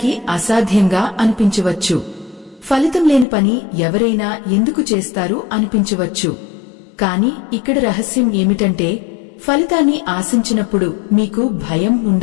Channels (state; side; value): drops out; right; at 3.2 s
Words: అసాధ్యంగా అనిపించవచ్చు. ఫలితం లేని పని ఎవరైనా ఎందుకు చేస్తారు అనిపించవచ్చు. కాని ఇక్కడ రహస్యం ఏమిటంటే, ఫలితాన్ని ఆశించినప్పుడు మీకు భయం